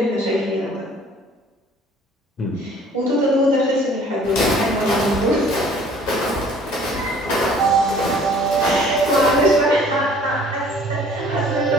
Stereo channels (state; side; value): normal; both; correlation 0.53